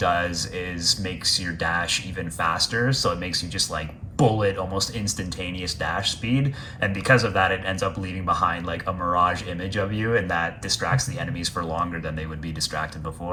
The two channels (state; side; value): identical; both; correlation 1.00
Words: is makes your dash even faster. So it makes you just like bullet, almost instantaneous dash speed. And because of that, it ends up leaving behind like a mirage image of you, and that distracts the enemies for longer than they would be distracted